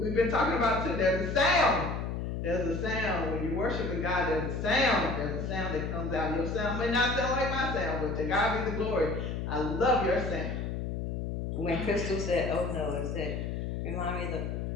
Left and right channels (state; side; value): noise; left; hum, 3 dB below the sound